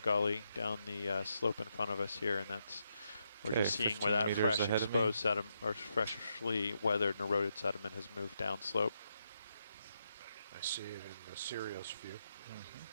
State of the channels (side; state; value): both; inverted; correlation -0.81